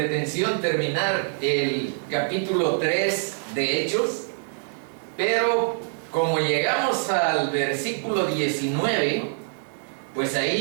terminar el capítulo 3 de Hechos, pero como llegamos al versículo 19, pues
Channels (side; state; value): left; silent; digital silence